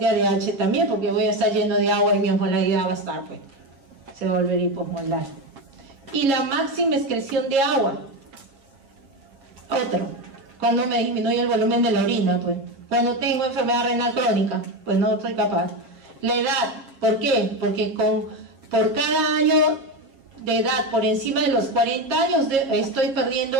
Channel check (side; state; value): left; late; 7.4 ms